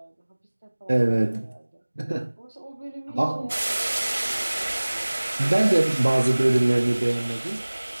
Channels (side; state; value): both; inverted; correlation -1.00